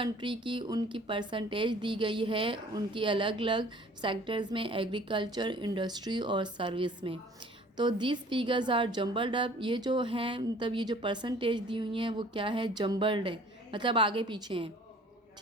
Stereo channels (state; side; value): normal; both; correlation 0.51